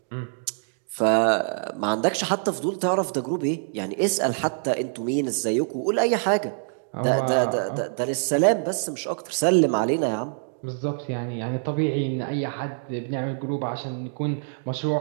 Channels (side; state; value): left; silent; digital silence